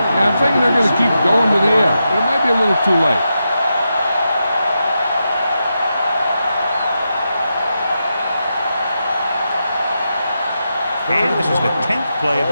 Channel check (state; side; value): inverted; both; correlation -0.87